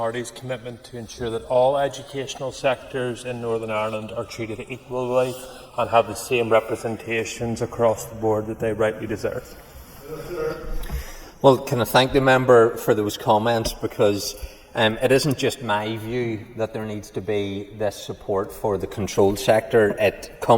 commitment, to ensure that all educational sectors in Northern Ireland are treated equally and have the same representations across the board that they rightly deserve? Well, can I thank the member for those comments, because it isn't just my view that there needs to be this support for the controlled sector. It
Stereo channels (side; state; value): both; identical; correlation 1.00